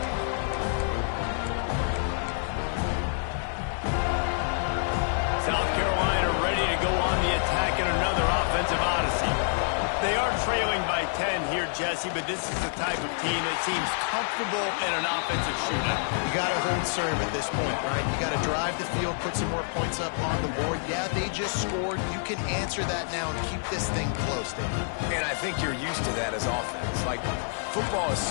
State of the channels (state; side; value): silent; right; digital silence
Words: South Carolina ready to go on the attack in another offensive odyssey. They are trailing by 10 here, Jesse, but this is the type of team that seems comfortable in an offensive shootout. You got to hold serve at this point, right? You got to drive the field, put some more points up on the board. Yeah, they just scored. You can answer that now and keep this thing close, David. And I think you're used to that as offense. Like, football is